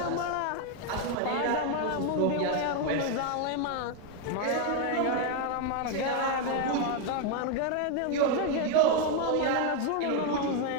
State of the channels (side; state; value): both; different; correlation 0.01